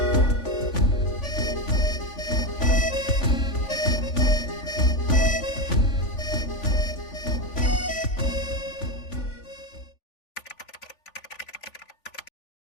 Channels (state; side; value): late; right; 3.5 ms